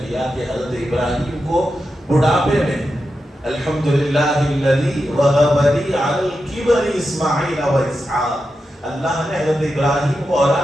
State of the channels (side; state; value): both; normal; correlation 0.89